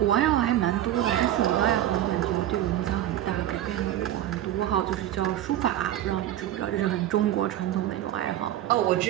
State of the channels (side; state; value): left; quieter; 12.5 dB